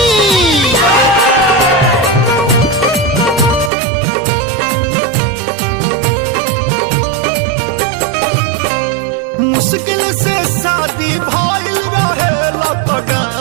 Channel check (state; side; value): drops out; left; at 3.7 s